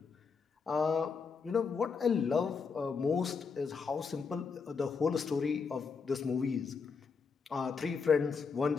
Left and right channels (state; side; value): quieter; right; 5.4 dB